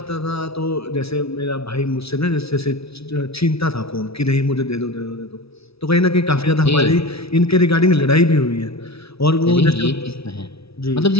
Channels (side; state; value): right; late; 0.77 ms